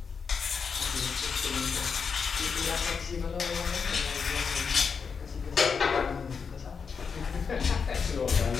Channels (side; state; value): right; quieter; 5.8 dB